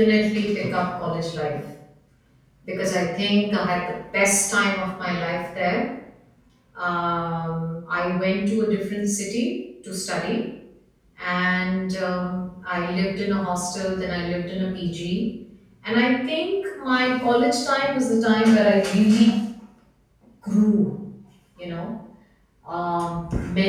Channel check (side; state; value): both; identical; correlation 1.00